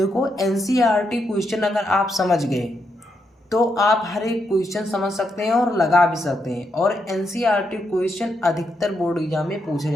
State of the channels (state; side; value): normal; both; correlation 0.81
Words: एनसीईआरटी क्वेश्चन अगर आप समझ गए तो आप हर एक क्वेश्चन समझ सकते हैं और लगा भी सकते हैं। और एनसीईआरटी क्वेश्चन अधिकतर बोर्ड एग्जाम में पूछे